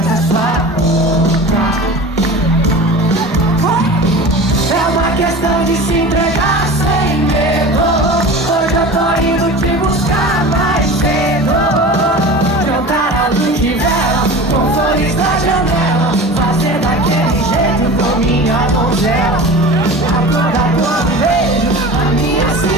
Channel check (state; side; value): normal; both; correlation 0.35